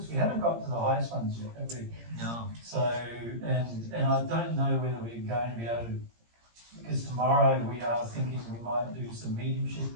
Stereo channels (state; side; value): late; left; 17 ms